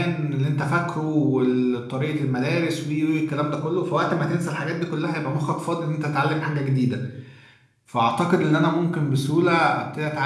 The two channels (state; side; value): identical; both; correlation 1.00